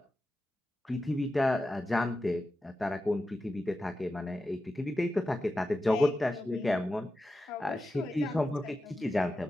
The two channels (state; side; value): normal; both; correlation 0.91